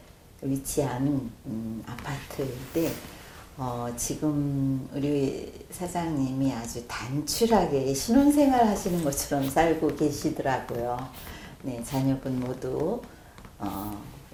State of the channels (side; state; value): both; identical; correlation 1.00